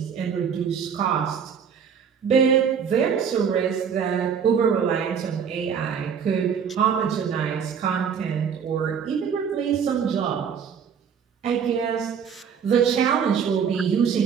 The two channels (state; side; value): quieter; left; 7.2 dB